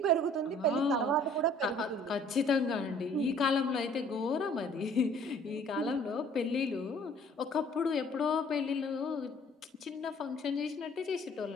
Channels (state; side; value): normal; both; correlation 0.55